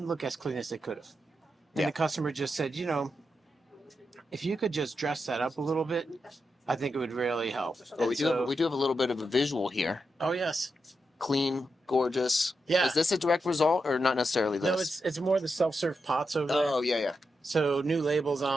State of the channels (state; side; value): normal; both; correlation 0.86